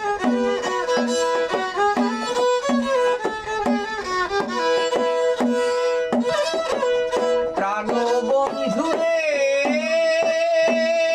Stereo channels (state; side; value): identical; both; correlation 1.00